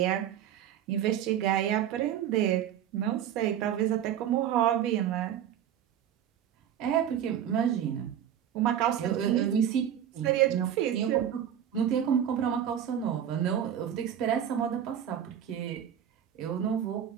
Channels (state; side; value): quieter; left; 9.9 dB